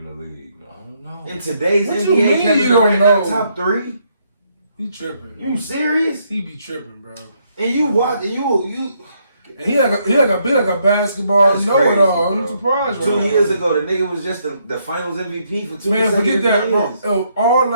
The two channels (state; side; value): inverted; both; correlation -0.73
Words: the league. I don't know. In today's what NBA, you don't know? Top 3. He tripping. You serious? He be tripping, bro. And you watch, and you. And he like a basketball know-it-all. I'm surprised. 2 years ago, the nigga was just the Finals MVP for 2 years. Man, forget that. Years. All